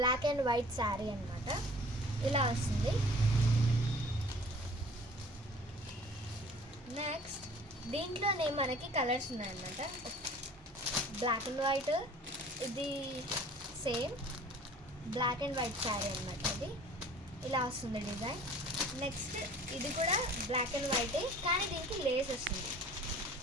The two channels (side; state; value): both; normal; correlation 0.48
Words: అండ్ వైట్ శారీ అనమాట. ఇలా వస్తుంది. నెక్స్ట్ దీంట్లోనే మనకి కలర్స్ ఉన్నాయన్నమాట. బ్లాక్ అండ్ వైట్, ఇది same black and white sari అనమాట. ఇది ఇలా వస్తుంది డిజైన్. నెక్స్ట్ ఇది కూడా బ్లాక్ అండ్ వైటే, కానీ దీనికి లేస్ వస్తుంది.